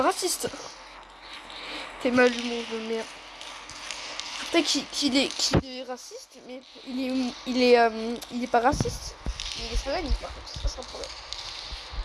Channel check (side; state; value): both; identical; correlation 1.00